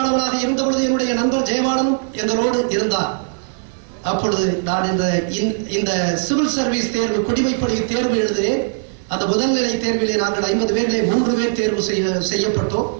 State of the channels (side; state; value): left; silent; digital silence